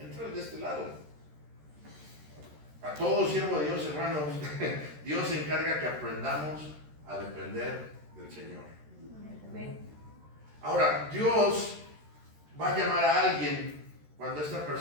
de este lado. A todo siervo de Dios, hermanos, Dios se encarga que aprendamos a depender del Señor. Ahora, Dios va a llamar a alguien cuando esta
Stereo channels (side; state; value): left; late; 13 ms